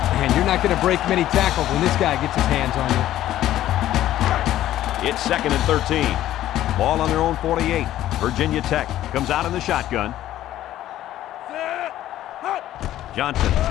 Man, you're not going to break many tackles when this guy gets his hands on you. It's 2nd and 13. Ball on their own 48. Virginia Tech comes out in the shotgun. Johnson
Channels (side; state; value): right; quieter; 13.3 dB